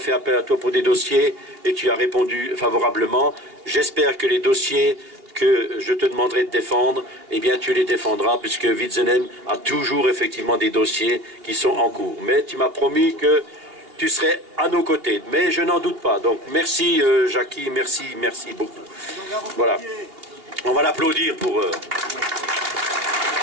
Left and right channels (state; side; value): late; left; 2.8 ms